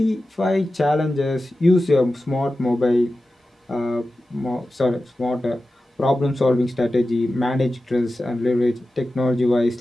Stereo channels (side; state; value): both; normal; correlation 0.93